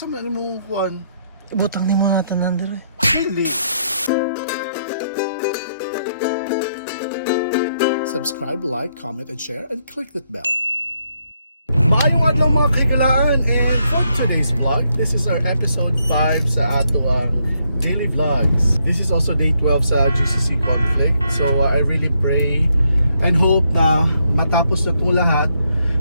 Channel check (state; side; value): inverted; both; correlation -0.76